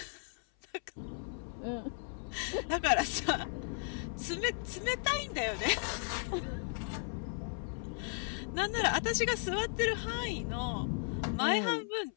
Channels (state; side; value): silent; right; 54 dB below the other